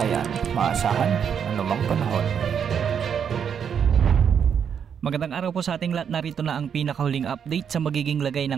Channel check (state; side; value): quieter; left; 7.7 dB